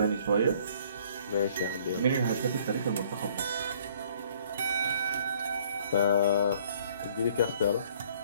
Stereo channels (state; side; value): inverted; both; correlation -0.58